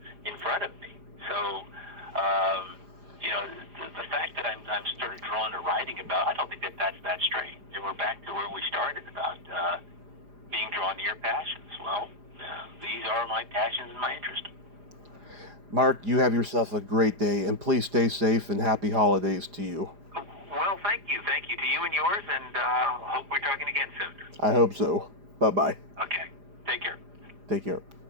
in front of me. So, the fact that I'm sort of drawn to writing about, I don't think that's that strange. And we're back to where we started about being drawn to your passions. Well, these are my passions and my interest. Mark, you have yourself a great day, and please stay safe and happy holidays to you. Well, thank you. Thank you to you and yours, and hope we're talking again soon. I hope so. Bye-bye. Okay. Take care. Take care.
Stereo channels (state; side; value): late; left; 4.9 ms